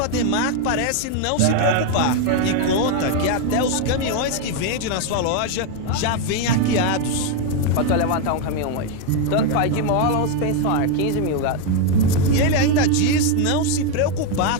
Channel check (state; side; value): different; both; correlation 0.01